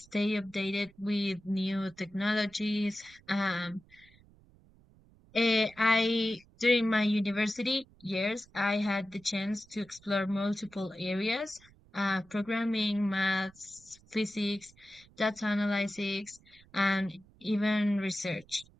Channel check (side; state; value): right; noise; rumble, 27 dB below the sound